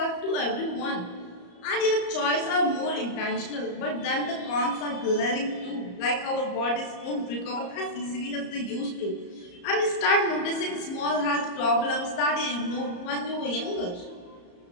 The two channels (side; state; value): right; late; 34 ms